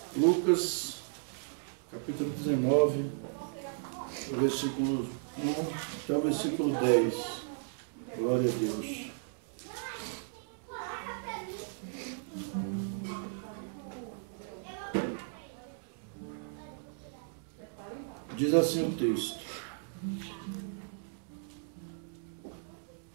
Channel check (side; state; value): left; silent; digital silence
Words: Lucas, capítulo 19, versículo 1 até o versículo 10. Glória a Deus. Diz assim o texto: